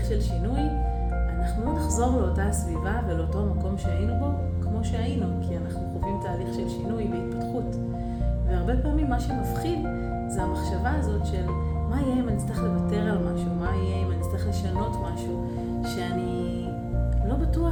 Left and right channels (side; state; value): both; identical; correlation 1.00